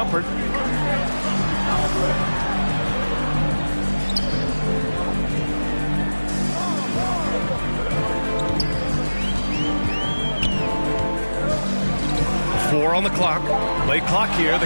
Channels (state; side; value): inverted; both; correlation -1.00